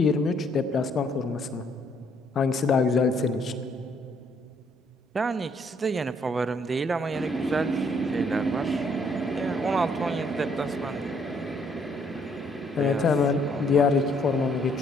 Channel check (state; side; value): normal; both; correlation 0.67